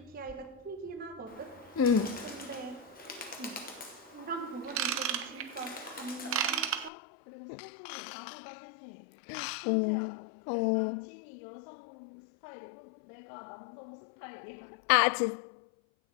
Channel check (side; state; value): right; drops out; at 6.9 s